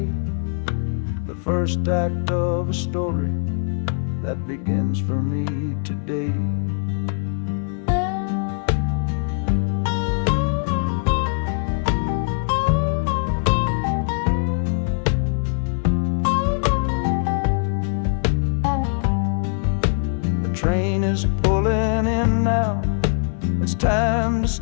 the first act of a story that begins for me today. The train is pulling in now, it's time to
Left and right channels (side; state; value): right; silent; digital silence